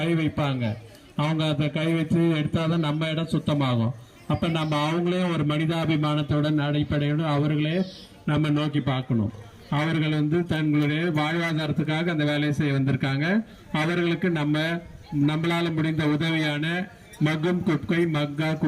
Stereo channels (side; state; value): both; identical; correlation 1.00